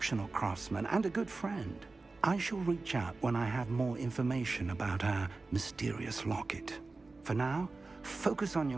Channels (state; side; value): quieter; left; 3.6 dB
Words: craftsman and a good friend. I shall reach out when I have more information about our mysterious locket. For now, focus on